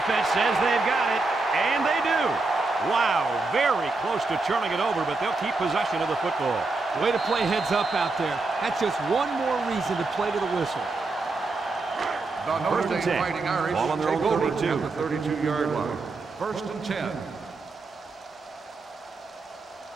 says they've got it, and they do. Wow, very close to turning it over, but they'll keep possession of the football. Way to play heads up out there. That's just one more reason to play to the whistle. The Notre First and Dame 10. Fighting Irish Ball on their take own over 32. at the 32-yard line. First and 10.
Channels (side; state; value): left; quieter; 3.6 dB